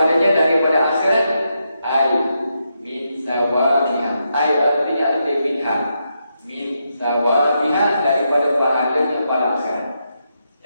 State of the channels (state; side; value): inverted; both; correlation -0.83